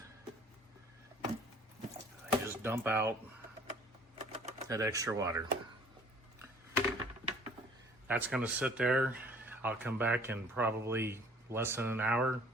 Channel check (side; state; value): both; normal; correlation 0.53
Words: I just dump out that extra water. That's going to sit there. I'll come back in probably less than an hour,